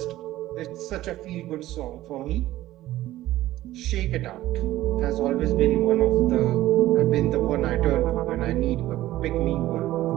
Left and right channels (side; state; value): left; quieter; 15.3 dB